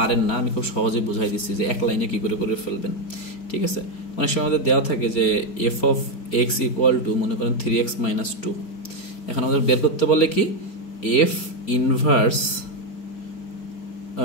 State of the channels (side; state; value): right; late; 4.3 ms